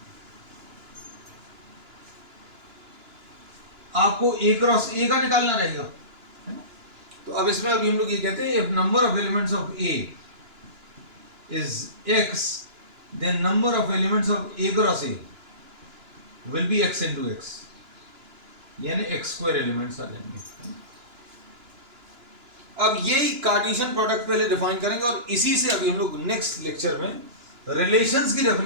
आपको ए क्रॉस ए का निकालना रहेगा, है ना। तो अब इसमें अभी हम लोग ये कहते हैं if number of elements of A is X then number of elements of A cross A will be X into X, यानी एक्स स्क्वायर एलिमेंट्स आ जाएंगे। अब यही कार्टेशियन प्रोडक्ट पहले डिफाइन करेंगे और इसी से अभी हम लोग नेक्स्ट लेक्चर में रिलेशंस की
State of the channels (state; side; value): late; left; 2.9 ms